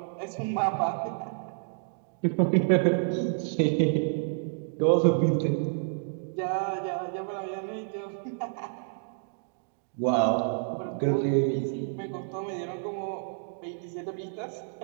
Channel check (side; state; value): left; silent; digital silence